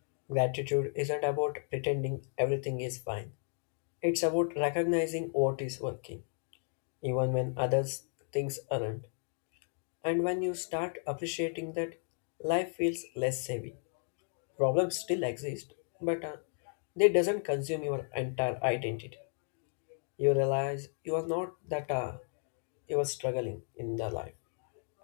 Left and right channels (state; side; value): silent; right; 55 dB below the other